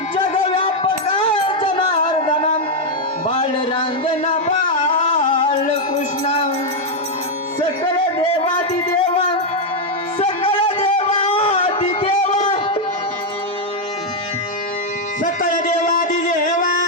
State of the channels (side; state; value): both; normal; correlation 0.00